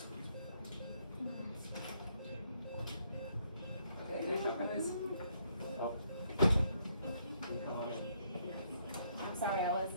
I'm sorry, I was.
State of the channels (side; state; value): both; inverted; correlation -0.71